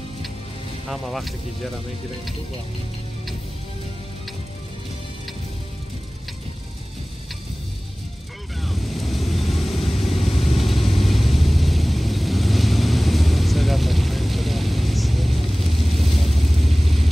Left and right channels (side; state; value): both; normal; correlation 0.98